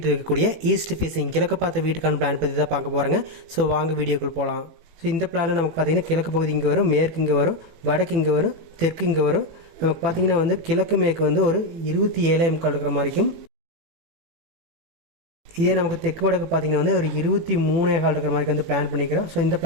இருக்கக்கூடிய ஈஸ்ட் ஃபேஸிங் கிழக்கு பார்த்த வீட்டுக்கான பிளான் பற்றி தான் பார்க்க போகிறாங்க. ஸோ வாங்க வீடியோக்குள் போகலாம். ஸோ இந்த பிளானில் நமக்கு பார்த்திங்கன்னா கிழக்கு பகுதி இங்கே வரும், மேற்கு இங்கே வரும், வடக்கு இங்கே வரும், தெற்கு இங்கே வரும். நமக்கு பார்த்திங்கன்னா கிழக்கு மேற்கு ஒரு 27 இருக்கிற மாதிரிக்கும், இதே நமக்கு தெற்கு வடக்கு பார்த்தீங்கன்னா ஒரு 23 இருக்கிற மாதிரி பிளான் பண்ணிக்கிறோம். ஸோ இந்த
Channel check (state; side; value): late; left; 18 ms